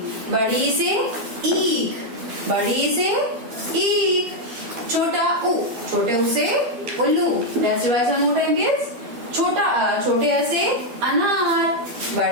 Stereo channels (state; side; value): late; left; 12 ms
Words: बड़ी ई से ईख, बड़ी ई से ईख। छोटा उ, छोटे उ से उल्लू। Let's revise one more time kids. छोटा अ, छोटे अ से अनार,